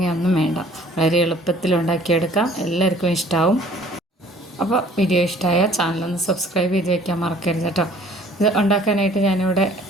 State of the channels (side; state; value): both; normal; correlation 0.54